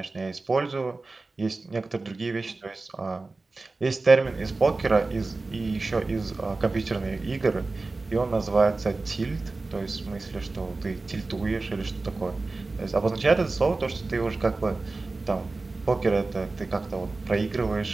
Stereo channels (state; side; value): quieter; left; 3.5 dB